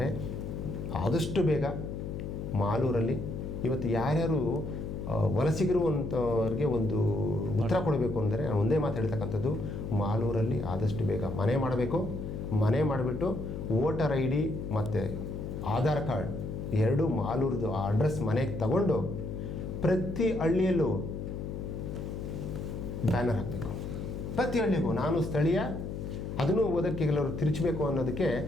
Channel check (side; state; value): left; noise; hum, 6 dB below the sound